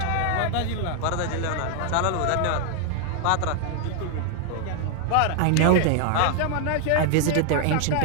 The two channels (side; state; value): both; different; correlation 0.00